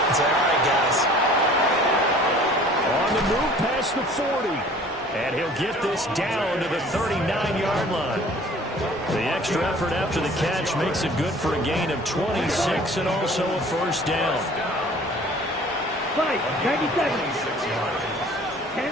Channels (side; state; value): both; normal; correlation 0.50